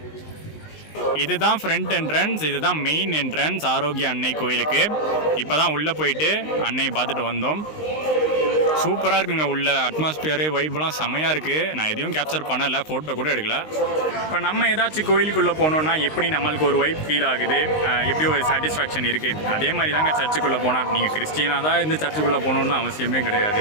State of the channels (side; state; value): right; late; 19 ms